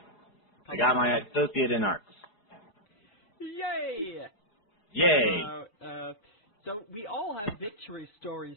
I got my associate in arts. Yay!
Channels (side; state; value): right; late; 4.8 ms